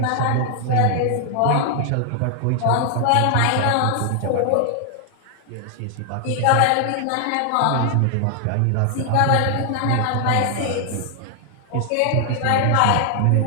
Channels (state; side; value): different; both; correlation 0.00